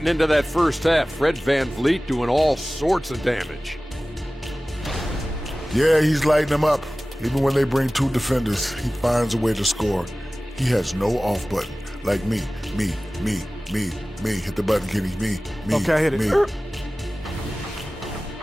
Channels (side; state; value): both; normal; correlation 0.97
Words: into that first half, Fred Van Vliet doing all sorts of damage. Yeah, he's lighting them up. Even when they bring 2 defenders, he finds a way to score. He has no off button. Like me. Hit the button, Kenny. Me. Okay, I hit it. Me.